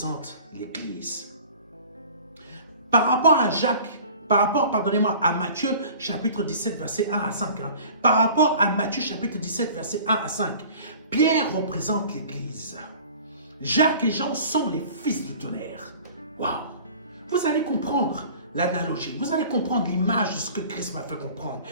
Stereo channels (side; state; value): both; inverted; correlation -0.45